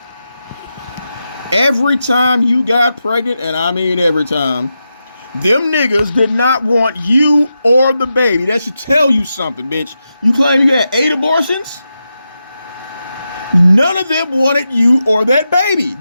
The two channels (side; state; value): both; inverted; correlation -0.88